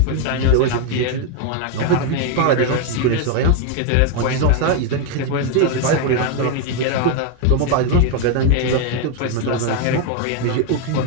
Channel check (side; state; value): both; different; correlation 0.01